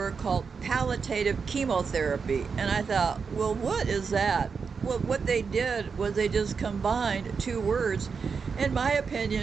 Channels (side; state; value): left; quieter; 5.5 dB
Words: called palliative chemotherapy, and I thought, well, what is that? Well, what they did was they just combined two words, in my